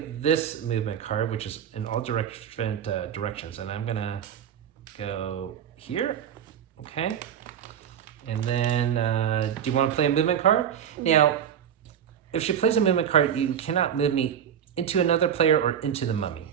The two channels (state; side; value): quieter; left; 8.9 dB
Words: movement card, which is in all different directions. And I'm going to go here. Okay? And then, do you want to play a movement card? Now, if she plays a movement card, you cannot move me into another player or into the mummy.